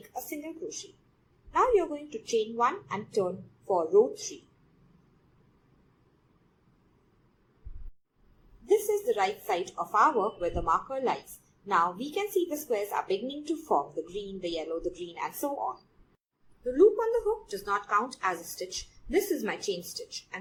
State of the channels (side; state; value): both; identical; correlation 1.00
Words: a single crochet. Now you are going to chain 1 and turn for row 3. This is the right side of our work where the marker lies. Now we can see the squares are beginning to form, the green, the yellow, the green, and so on. The loop on the hook does not count as a stitch. This is my chain stitch